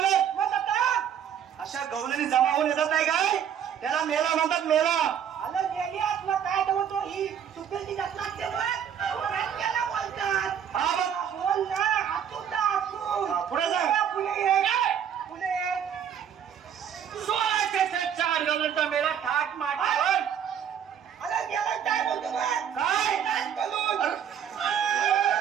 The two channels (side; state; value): left; quieter; 8.7 dB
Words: अशा गवलेनी जमा होऊन येतात नाही काय त्याला मेला म्हणतात. मेला आलं गेली आत्मा काय बोलतो ही चुकेल जात लागते बोलतात हा बघ. बोल ना हातून पुढे सांग. पुढे 16 शतकाच्या आठ गबळ्यांचा मेला थाट माटावर आलं गेलं काय बोलतो काय